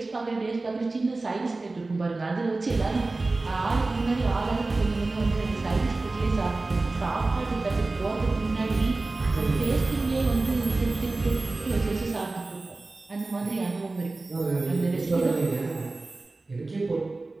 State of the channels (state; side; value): quieter; left; 3.3 dB